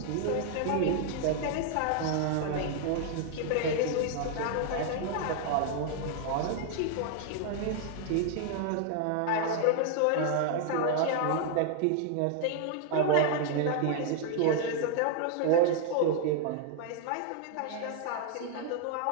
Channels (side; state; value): both; different; correlation 0.00